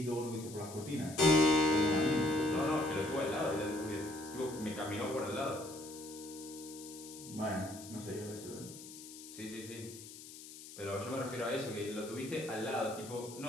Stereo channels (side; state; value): left; noise; hiss, 14 dB below the sound